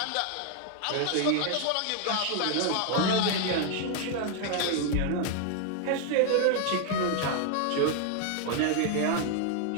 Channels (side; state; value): both; different; correlation 0.00